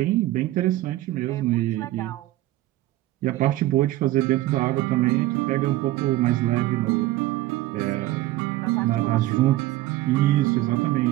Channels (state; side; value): quieter; left; 16.4 dB